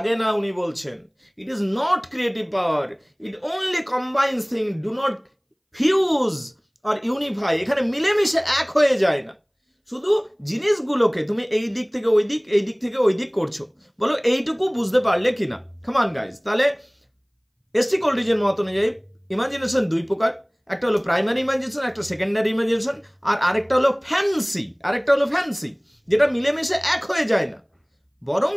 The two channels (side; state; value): both; identical; correlation 1.00